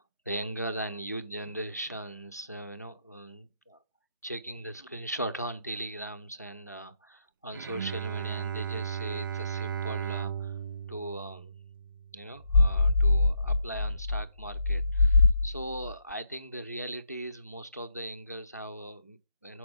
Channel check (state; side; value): inverted; both; correlation -0.76